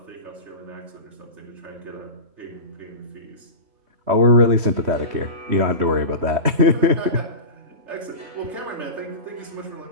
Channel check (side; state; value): left; late; 3.2 ms